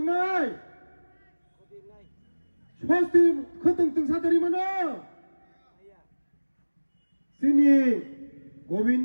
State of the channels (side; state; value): both; inverted; correlation -1.00